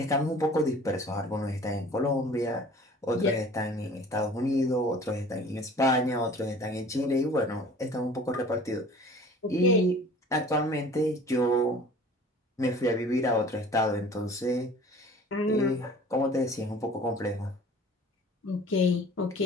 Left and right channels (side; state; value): both; normal; correlation 0.46